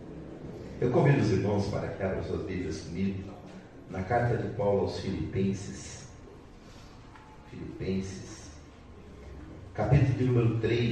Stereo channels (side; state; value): both; identical; correlation 1.00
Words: Eu convido os irmãos para que abram suas Bíblias comigo na carta de Paulo aos Filipenses. Filipenses, capítulo de número